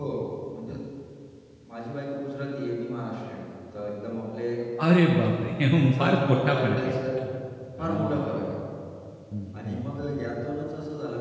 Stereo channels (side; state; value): both; identical; correlation 1.00